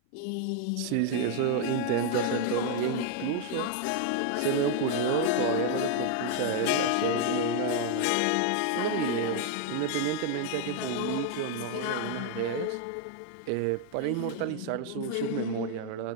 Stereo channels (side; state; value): both; different; correlation 0.00